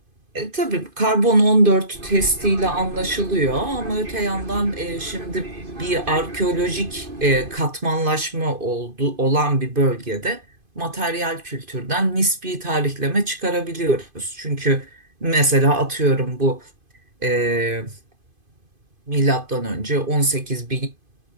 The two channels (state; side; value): late; left; 2.5 ms